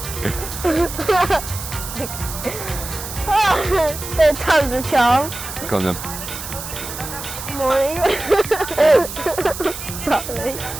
Third time's a charm. Go on then. Morning. Sorry.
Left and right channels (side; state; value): right; noise; hiss, 9 dB below the sound